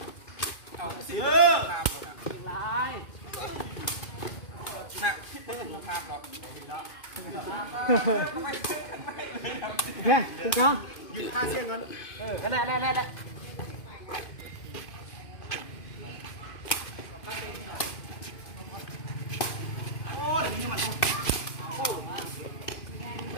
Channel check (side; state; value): right; late; 2.5 ms